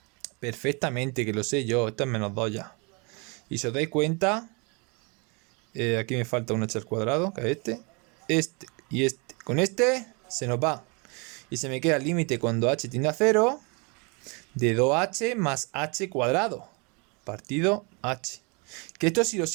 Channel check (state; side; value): quieter; left; 31.7 dB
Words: Perfectamente, que lo sé yo. Esto es menos 2 ya. Y si os dais cuenta, aquí me falta un h al cuadrado, que es este. Este y este. Con este se nos va. Y se me queda el límite cuando h tiende a 0 de 2h más h cuadrado partido h. Que esto, si lo